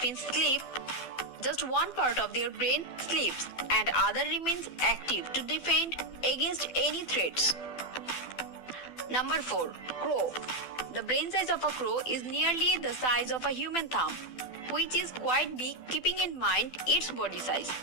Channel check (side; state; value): right; late; 12 ms